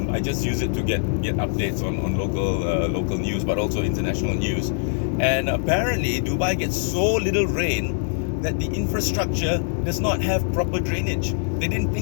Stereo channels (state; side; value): silent; right; 63 dB below the other